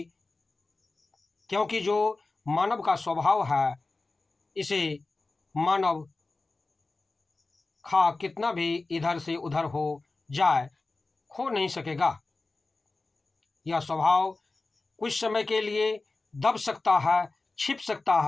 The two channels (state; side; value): quieter; right; 3.5 dB